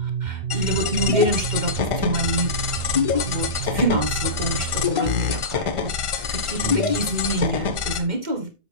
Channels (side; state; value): left; late; 1.5 ms